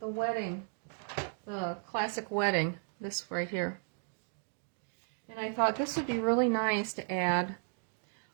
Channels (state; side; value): silent; left; 55 dB below the other